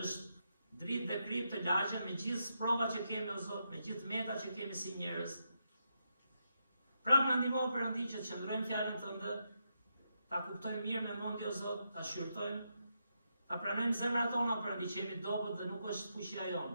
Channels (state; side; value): inverted; both; correlation -0.83